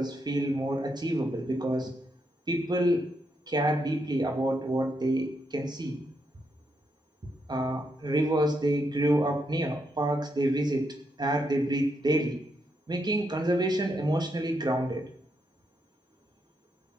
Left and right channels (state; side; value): normal; both; correlation 0.80